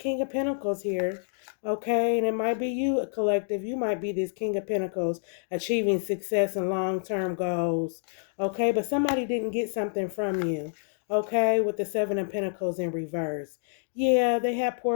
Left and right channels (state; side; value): silent; right; digital silence